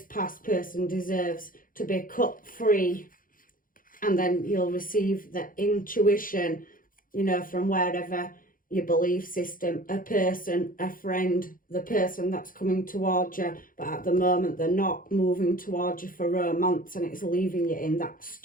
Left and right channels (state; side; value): late; right; 0.40 ms